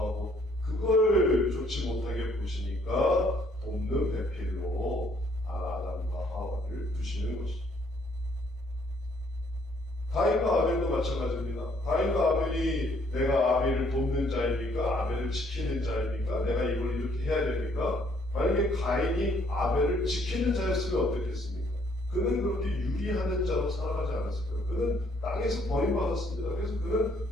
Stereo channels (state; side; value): normal; both; correlation 0.65